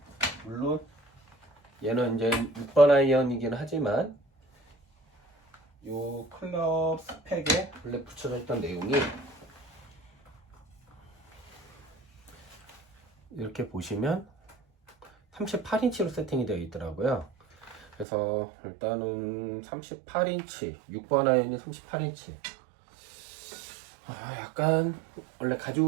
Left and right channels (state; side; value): drops out; left; at 18.1 s